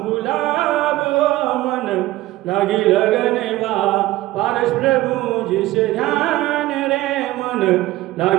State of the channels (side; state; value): left; quieter; 16.8 dB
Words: गुलाब मन लगी लगनवा, पारस प्रभु जिसे ध्यान रे मन